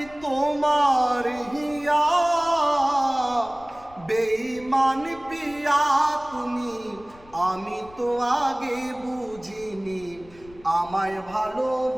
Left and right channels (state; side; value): noise; left; rumble, 23 dB below the sound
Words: তোমার হিয়া। বেঈমান পিয়া তুমি, আমি তো আগে বুঝিনি, আমায়